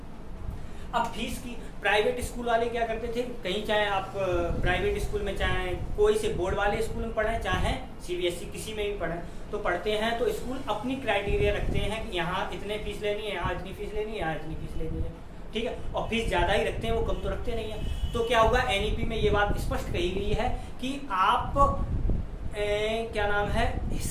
अब फीस की, प्राइवेट स्कूल वाले क्या करते थे, कहीं चाहे आप प्राइवेट स्कूल में, चाहे कोई से बोर्ड वाले स्कूल में पढ़ें, चाहे सीबीएसई किसी में भी पढ़ें, तो पढ़ते हैं तो स्कूल अपनी क्राइटेरिया रखते हैं कि यहाँ इतने फीस लेनी है, यहाँ इतनी फीस लेनी है, यहाँ इतनी फीस लेनी है। ठीक है, और फीस ज़्यादा ही रखते हैं, वो कम तो रखते नहीं है। तो क्या होगा, एनईपी में ये बात स्पष्ट कही गई है कि आप क्या नाम है,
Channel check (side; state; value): both; identical; correlation 1.00